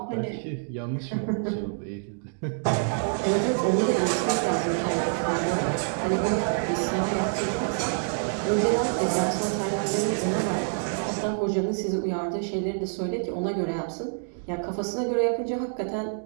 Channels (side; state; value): left; silent; digital silence